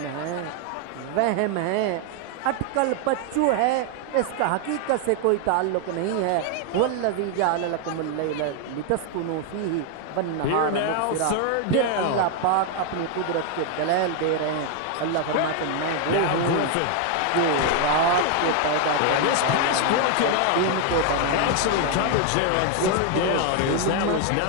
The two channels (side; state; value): both; different; correlation 0.00